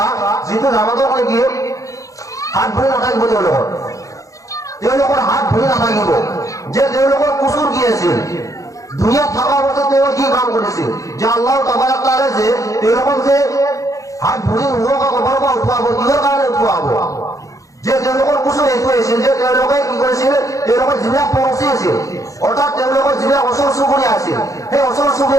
যিটো জামাতৰ কি হাত ভৰি নাথাকিব তেওঁলোকৰ হাত ভৰি নাথাকিব যে তেওঁলোকৰ কুচুৰ কি আছিল দুনিয়াত থকা অৱস্থাত তেওঁ কি কাম কৰিছিল যে আল্লাহ তাবাৰাক তাআলা যে তেওঁলোকক যে হাত ভৰি নোহোৱাকৈ কবৰৰ পৰা উঠোৱাব কিহৰ কাৰণে উঠোৱাব যে তেওঁলোকৰ কুচুৰ এইটো আছিল যে তেওঁলোকে কি কৰিছিল তেওঁলোকৰ যিবিলাক পৰচি আছিল অৰ্থাৎ তেওঁলোকৰ যিবিলাক ওচৰ চুবুৰীয়া আছিল সেই ওচৰ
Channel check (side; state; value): right; late; 0.16 ms